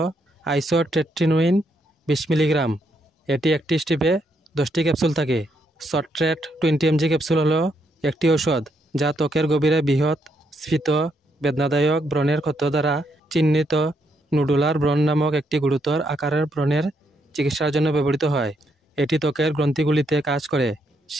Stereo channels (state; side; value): normal; both; correlation 0.76